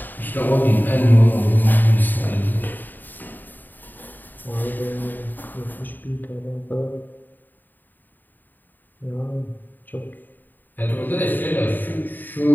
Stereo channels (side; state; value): right; late; 0.089 ms